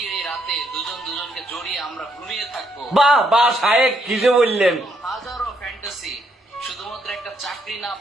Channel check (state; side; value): normal; both; correlation 0.74